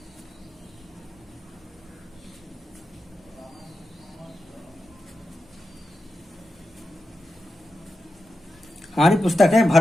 हमारी पुस्तक है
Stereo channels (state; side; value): normal; both; correlation 0.90